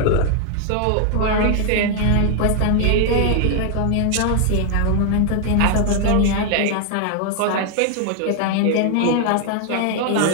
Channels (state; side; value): different; both; correlation 0.00